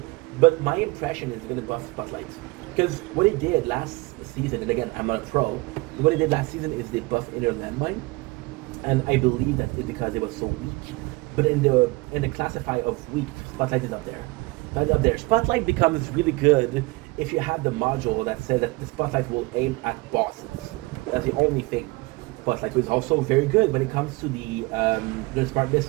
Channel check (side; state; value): left; quieter; 23.9 dB